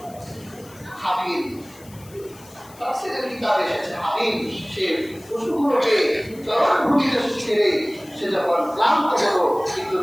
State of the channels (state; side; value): noise; left; hiss, 23 dB below the sound